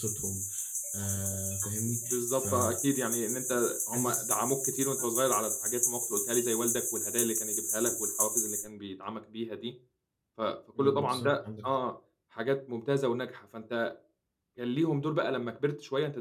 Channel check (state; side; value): identical; both; correlation 1.00